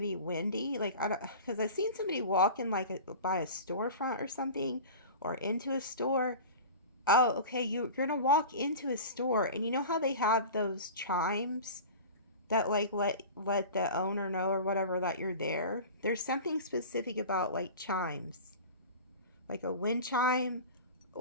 windy. Like, because I've seen somebody walking like by a storefront or something, or into a store. Oh, okay. You're going to walk into a store, and you know how they have those chimes that like let the owner know or whatever that you're there. There's something specific about like chimes, like a wind chime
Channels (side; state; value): both; inverted; correlation -0.35